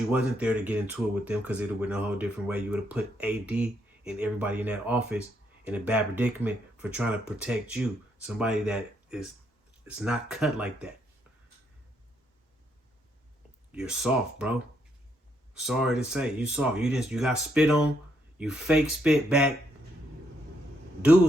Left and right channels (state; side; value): normal; both; correlation 0.75